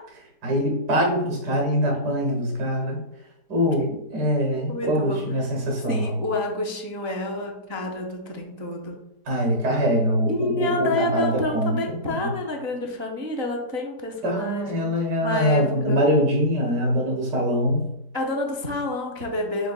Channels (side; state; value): left; late; 4.0 ms